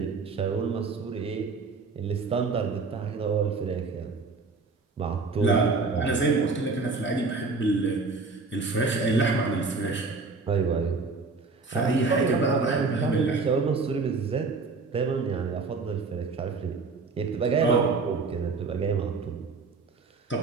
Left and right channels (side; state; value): left; quieter; 4.2 dB